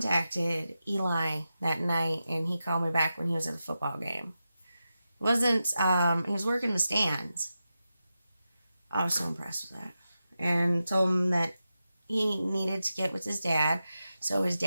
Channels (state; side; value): inverted; both; correlation -0.91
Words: Eli that night, and he called me back when he was at a football game. He was working the stands. I was so impressed with that. And told him that he needed to get with his dad so his